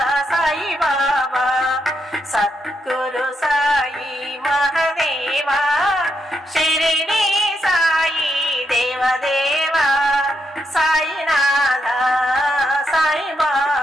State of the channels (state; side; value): normal; both; correlation 0.81